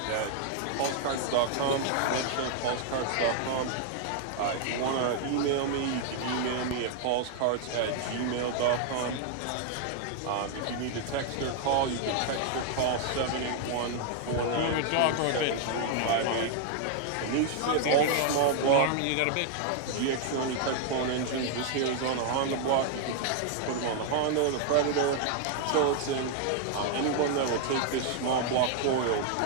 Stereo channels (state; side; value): different; both; correlation 0.00